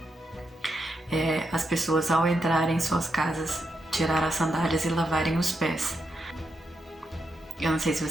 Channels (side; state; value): both; normal; correlation 0.84